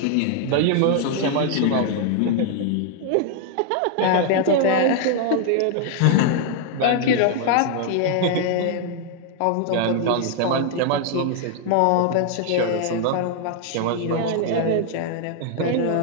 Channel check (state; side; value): different; both; correlation 0.00